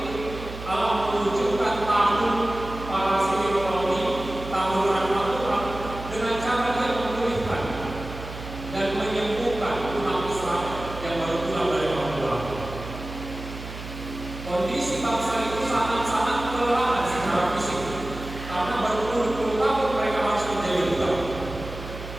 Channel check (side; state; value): right; noise; hum, 11 dB below the sound